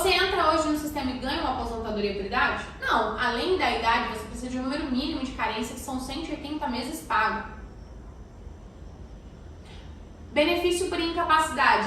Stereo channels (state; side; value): identical; both; correlation 1.00